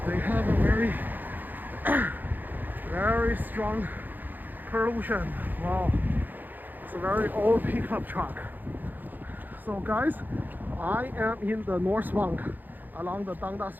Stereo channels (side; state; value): left; late; 0.086 ms